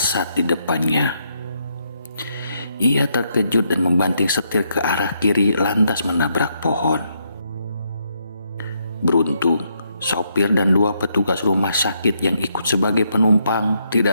di depannya. Ia terkejut dan membanting setir ke arah kiri lantas menabrak pohon. Beruntung, sopir dan 2 petugas rumah sakit yang ikut sebagai penumpang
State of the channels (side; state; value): both; inverted; correlation -0.76